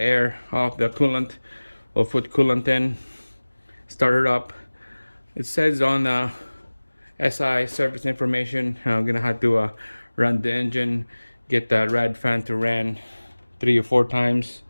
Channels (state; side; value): inverted; both; correlation -1.00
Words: off the coolant. We'll put coolant in, start it up. It says on SI service information, I'm gonna have to run the engine, get the rad fan to run 3 or 4 times,